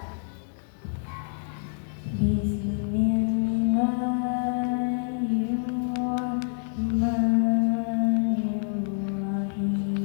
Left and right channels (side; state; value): right; silent; 60 dB below the other